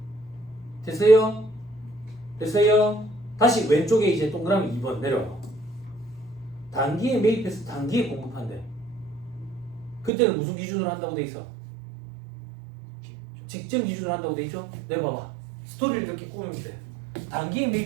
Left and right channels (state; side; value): drops out; left; at 10.1 s